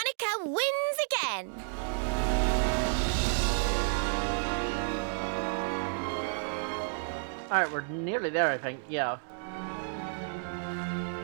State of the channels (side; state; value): left; silent; digital silence